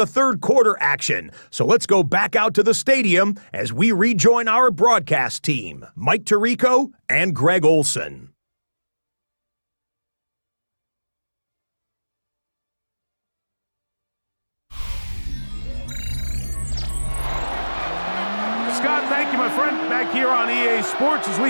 3rd quarter action. So let's go back out to the stadium as we rejoin our broadcast team, Mike Tirico and Greg Olson. Scott, thank you, my friend. Back here on EA Sports as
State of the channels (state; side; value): inverted; both; correlation -1.00